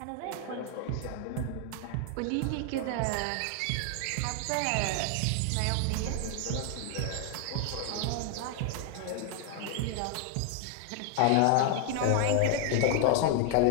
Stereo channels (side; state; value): both; different; correlation 0.00